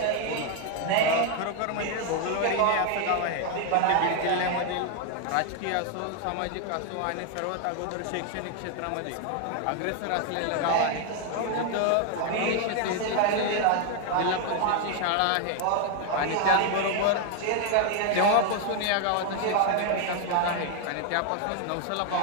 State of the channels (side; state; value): both; different; correlation 0.00